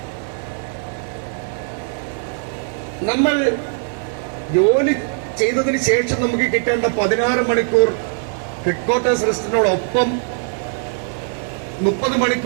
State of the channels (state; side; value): silent; left; 66 dB below the other